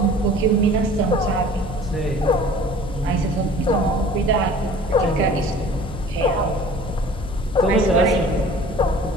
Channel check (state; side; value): normal; both; correlation 0.46